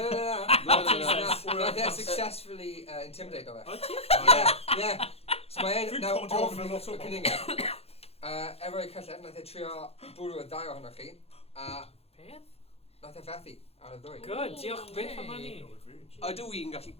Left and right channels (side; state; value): right; late; 0.29 ms